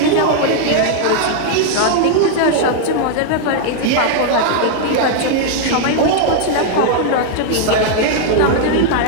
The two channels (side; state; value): both; different; correlation 0.00